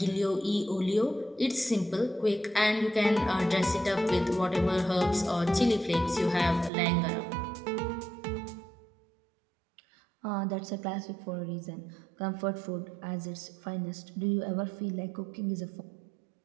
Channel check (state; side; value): drops out; left; at 6.7 s